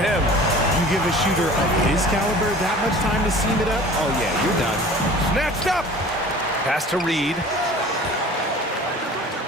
You give a shooter of his caliber that much time to seam it up? Oh, yeah, you're done. Snatched up. Pass to Reed.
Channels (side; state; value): both; normal; correlation 0.44